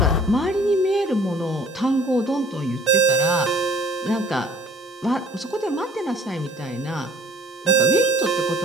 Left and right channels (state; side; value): normal; both; correlation 0.54